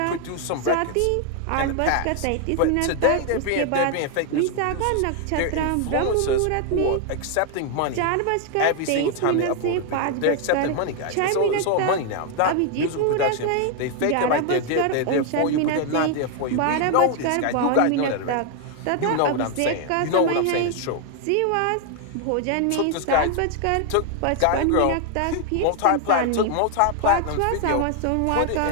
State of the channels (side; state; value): both; different; correlation 0.00